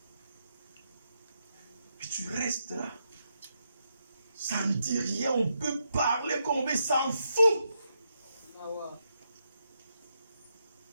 Et tu restes là. Ça ne dit rien. On peut parler comme on veut, s'en fout. Ah ouais.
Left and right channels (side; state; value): both; inverted; correlation -0.81